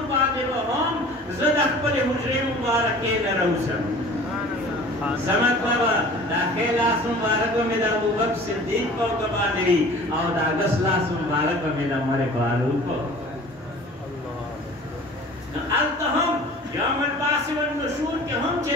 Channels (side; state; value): both; normal; correlation 0.44